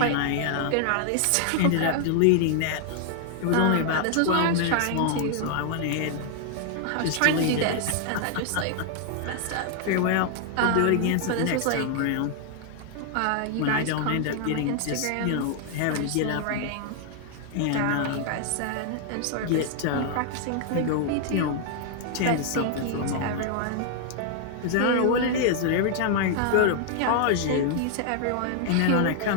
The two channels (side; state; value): both; different; correlation 0.00